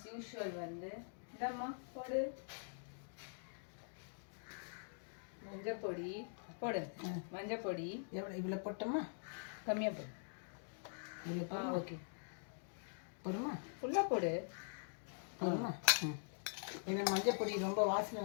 யூஷுவல் வந்து இந்தம்மா போடு, மஞ்சப்பொடி போடு. மஞ்சப்பொடி எவ்வளோ? இவ்வளோ போட்டோமா? கம்மியாக போடு. ஓகே, போடுமா? ஃபுல்லாக போடு. போடுமா? ஏன்னா மஞ்சப்பொடி ரொம்ப வாசனை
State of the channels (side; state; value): right; silent; digital silence